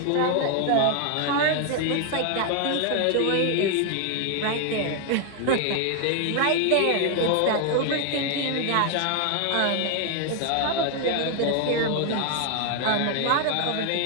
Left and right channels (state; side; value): different; both; correlation 0.01